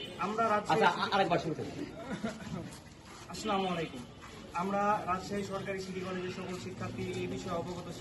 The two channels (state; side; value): identical; both; correlation 1.00